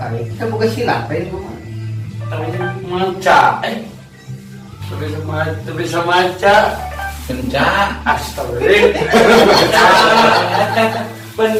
Kita buka silat teh itu mah. maca. Bisa maca. Kencang. Astagfirullah.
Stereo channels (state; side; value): identical; both; correlation 1.00